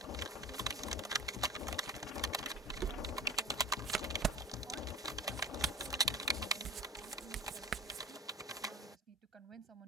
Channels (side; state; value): both; normal; correlation 0.31